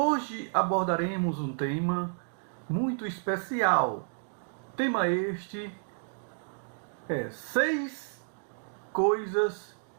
abordaremos um tema muito especial. Tema este é 6 coisas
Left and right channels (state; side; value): silent; left; digital silence